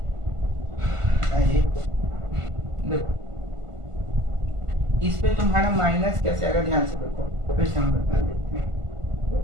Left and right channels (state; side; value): late; left; 1.5 ms